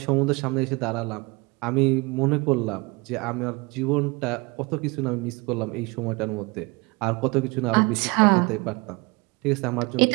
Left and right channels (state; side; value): quieter; left; 26.4 dB